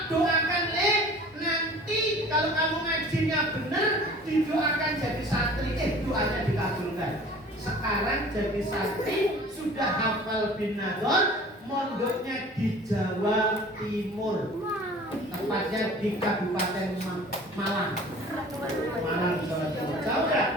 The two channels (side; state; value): both; normal; correlation 0.45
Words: doakan nanti kalau kamu ngajinya benar, didoakan jadi santri. Doanya dikabulkan. Sekarang jadi santri, sudah hafal bin Nador, mondoknya di Jawa Timur, tepatnya di Kabupaten Malang, Jawa Timur. Jauh kan?